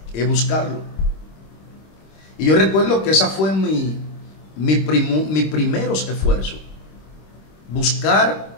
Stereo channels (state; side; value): late; right; 26 ms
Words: Es buscarlo. Y yo recuerdo que esa fue mis primeros esfuerzos. Buscar